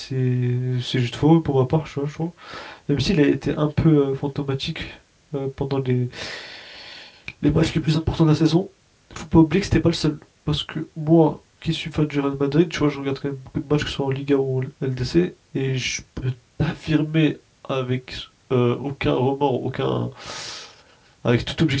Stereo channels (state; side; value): identical; both; correlation 1.00